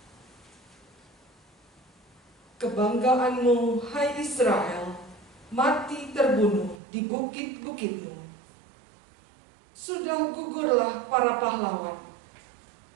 Kebanggaanmu, hai Israel, mati terbunuh di bukit-bukitmu. Sudah gugurlah para pahlawan,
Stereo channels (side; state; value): left; drops out; at 6.8 s